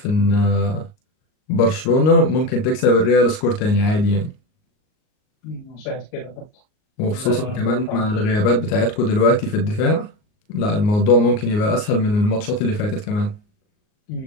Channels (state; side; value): late; right; 38 ms